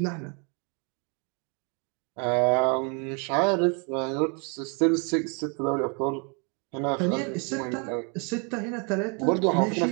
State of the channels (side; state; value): left; quieter; 35.6 dB